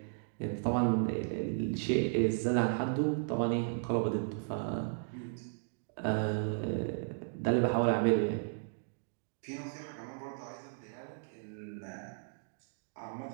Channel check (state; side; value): silent; left; digital silence